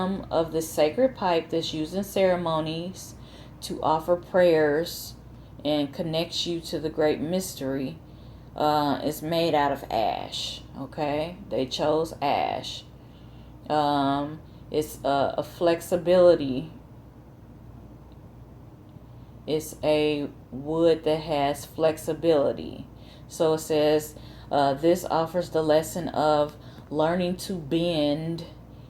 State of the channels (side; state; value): both; identical; correlation 1.00